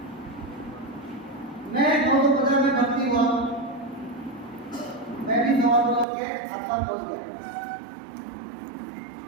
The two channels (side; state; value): left; drops out; at 6.1 s